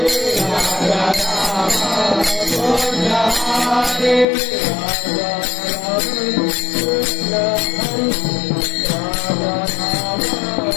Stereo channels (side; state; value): right; drops out; at 4.2 s